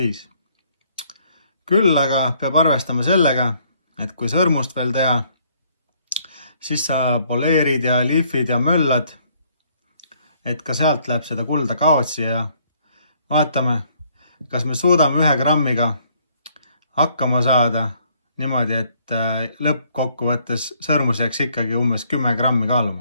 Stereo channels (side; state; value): both; inverted; correlation -0.66